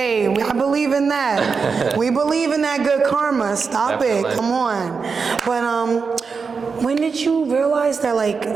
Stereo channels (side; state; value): left; quieter; 5.2 dB